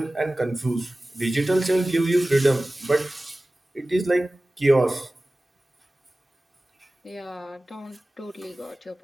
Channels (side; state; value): both; normal; correlation 0.97